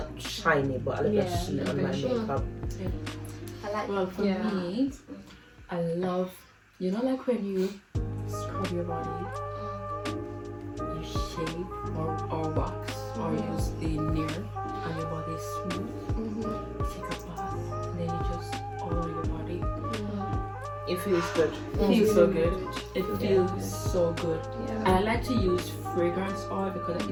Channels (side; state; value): both; identical; correlation 1.00